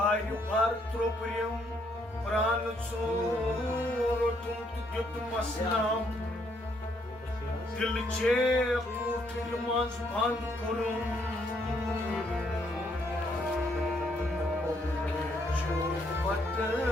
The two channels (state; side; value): normal; both; correlation 0.71